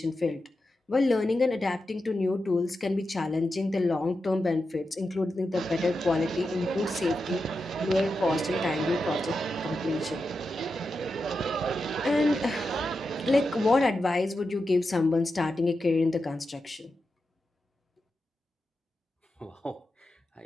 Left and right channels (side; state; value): both; normal; correlation 0.89